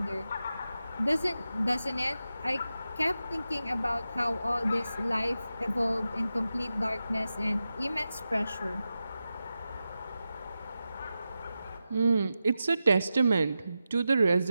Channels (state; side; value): inverted; both; correlation -0.91